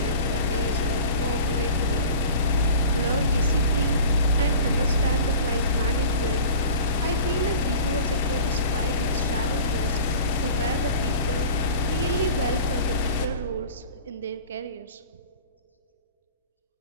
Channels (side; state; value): both; inverted; correlation -0.40